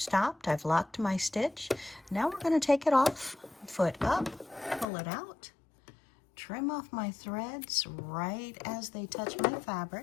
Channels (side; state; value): right; drops out; at 4.9 s